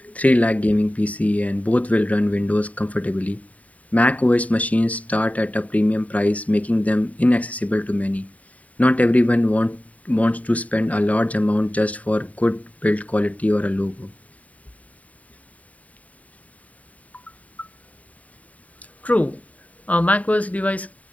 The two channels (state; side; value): late; right; 0.070 ms